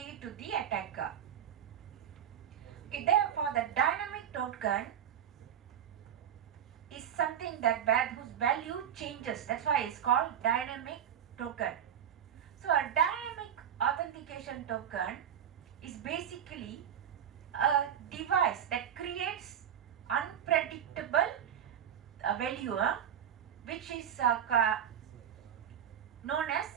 it to the attacker. Okay, therefore the dynamic token is something whose value changes. That's why it's called dynamic token. So a dynamic authentication token is basically a device that creates unpredictable value, which is known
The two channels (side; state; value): left; quieter; 9.2 dB